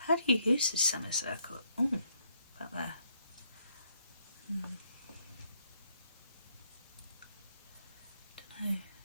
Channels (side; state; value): both; inverted; correlation -0.71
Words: How do you use this semicircle? Oh, about there. Don't know.